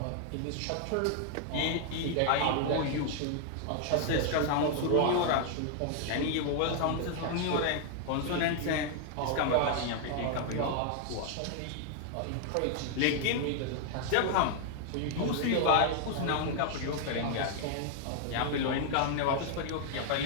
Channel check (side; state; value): both; different; correlation 0.00